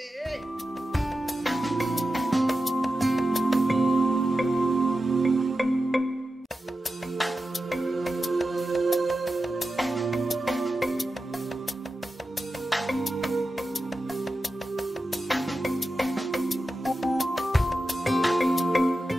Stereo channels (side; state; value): both; normal; correlation 0.92